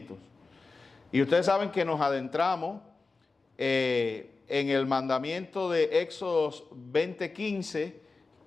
Y ustedes saben que nos adentramos en el mandamiento de Éxodos 20:15,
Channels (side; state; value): right; quieter; 3.9 dB